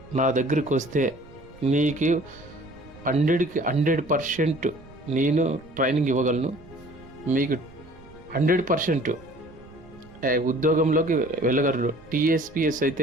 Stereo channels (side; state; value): right; noise; rumble, 22 dB below the sound